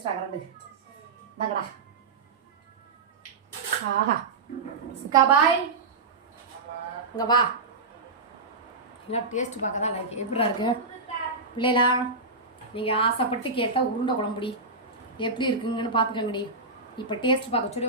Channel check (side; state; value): left; quieter; 3.7 dB